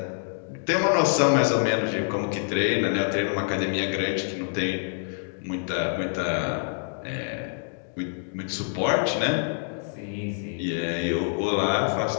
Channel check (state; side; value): silent; right; digital silence